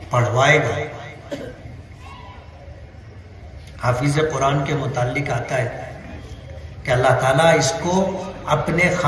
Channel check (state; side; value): identical; both; correlation 1.00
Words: پڑھوائے گا. حافظ قرآن کے متعلق آتا ہے کہ اللہ تعالیٰ اس کو اپنے